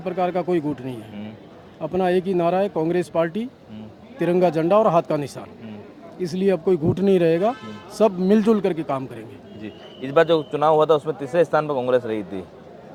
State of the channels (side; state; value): both; identical; correlation 1.00